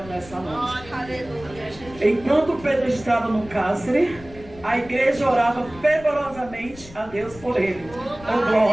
nessa noite. Enquanto Pedro estava no cárcere, a igreja orava fervorosamente a Deus por ele. Oh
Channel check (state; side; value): noise; left; rumble, 19 dB below the sound